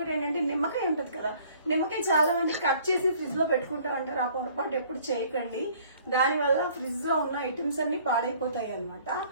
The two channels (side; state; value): both; inverted; correlation -0.56